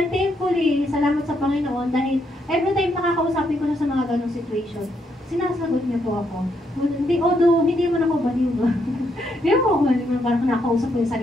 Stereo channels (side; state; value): both; normal; correlation 0.77